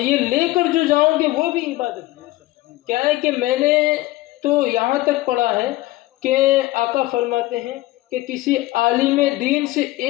لے کر جو جاؤں گے وہ بھی عبادت ہے. کیا ہے کہ میں نے تو یہاں تک پڑھا ہے کہ آقا فرماتے ہیں کہ کسی عالم دین سے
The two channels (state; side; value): quieter; right; 18.2 dB